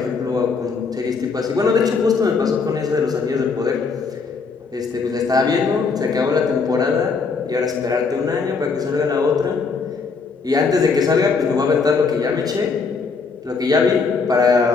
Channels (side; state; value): right; quieter; 4.9 dB